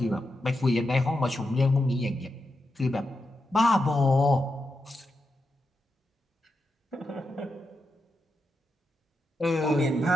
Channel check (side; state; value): both; normal; correlation 0.87